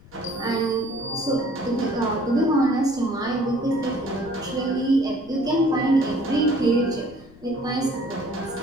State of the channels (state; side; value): noise; left; rumble, 24 dB below the sound